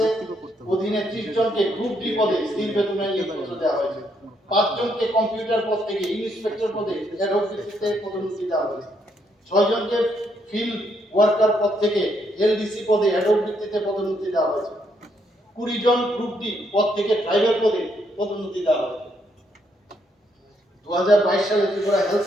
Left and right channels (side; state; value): both; normal; correlation 0.74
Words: অধীনে 30 জনকে গ্রুপ ডি পদে স্থির বেতনে নিয়োগপত্র দেওয়া হয়েছে। 5 জনকে কম্পিউটার পদ থেকে ইন্সপেক্টর পদে অ্যাডক ভিত্তিতে পদোন্নতি দেওয়া হয়েছে। 6 জনকে ফিল্ড ওয়ার্কার পদ থেকে এলডিসি পদে অ্যাডক ভিত্তিতে পদোন্নতি দেওয়া হয়েছে। 20 জন গ্রুপ ডি পদ থেকে ড্রাইভার পদে পদোন্নতি দেওয়া হয়েছে। 2022 সালে ত্রিপুরা হেলথ